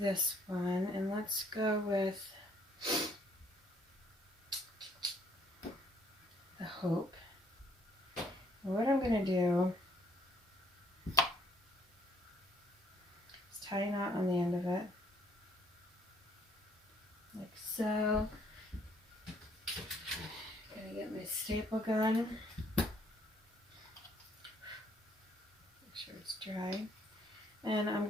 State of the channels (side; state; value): both; normal; correlation 0.64